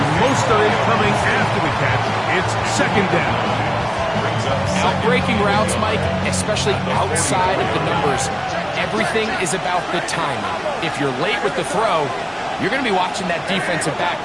Most of it coming after the catch. It's second down. Out-breaking routes, Mike, especially outside of the numbers, everything is about the timing. If you're late with the throw, you're going to be watching that defensive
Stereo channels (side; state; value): both; identical; correlation 1.00